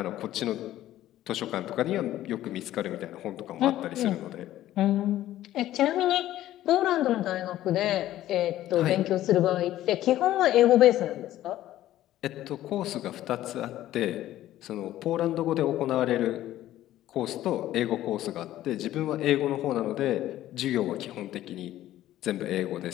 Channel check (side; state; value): right; quieter; 13.8 dB